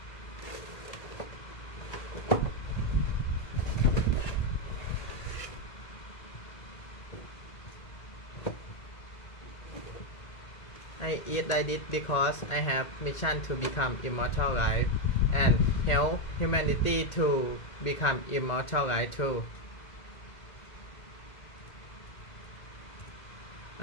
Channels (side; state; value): right; late; 2.0 ms